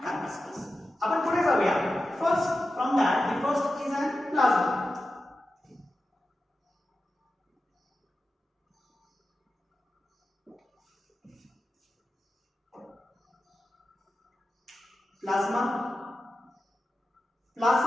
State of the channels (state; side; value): normal; both; correlation 0.92